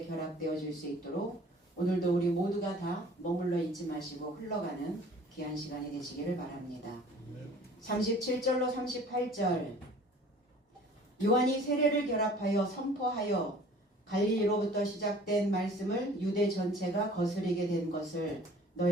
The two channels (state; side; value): normal; both; correlation 0.49